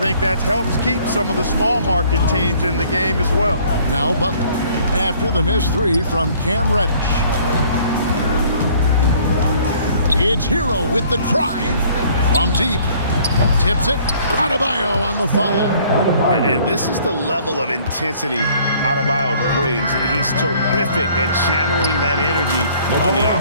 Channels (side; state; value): both; inverted; correlation -0.57